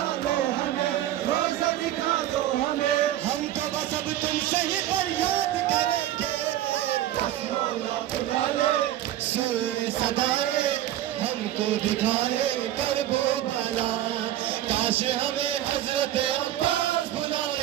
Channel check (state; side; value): quieter; left; 13.0 dB